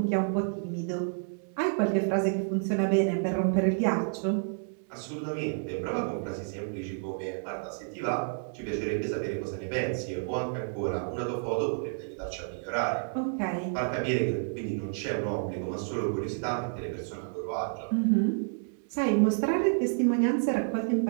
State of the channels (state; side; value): silent; left; digital silence